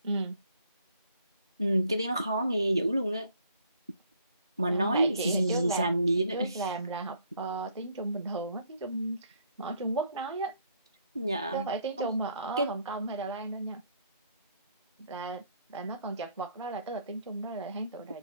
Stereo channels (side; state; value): both; inverted; correlation -0.66